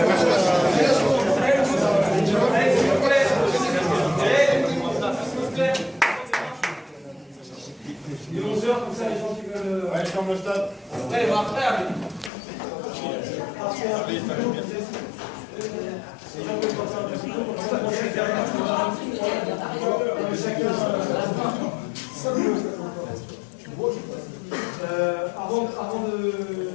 est 11h, comme ça les gens qui veulent. Ouais, je ferme le stade. Ouais, il va après, allez. Avant de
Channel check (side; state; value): right; drops out; at 12.3 s